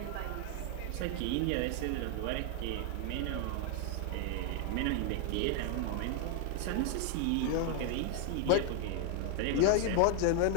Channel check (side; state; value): both; different; correlation 0.00